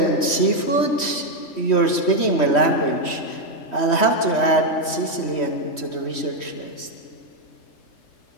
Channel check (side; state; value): right; late; 3.1 ms